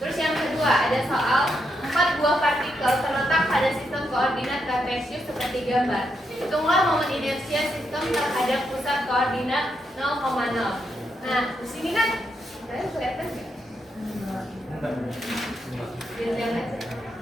yang kedua ada soal 4 buah partikel terletak pada sistem koordinat kartesius seperti gambar. Hitunglah momen inersia sistem terhadap pusat koordinat 0,0. Nah, di sini kan kalian kelihatan nggak? Diam aja.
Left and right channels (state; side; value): normal; both; correlation 0.81